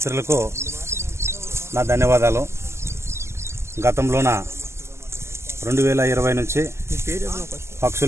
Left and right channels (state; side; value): late; left; 0.13 ms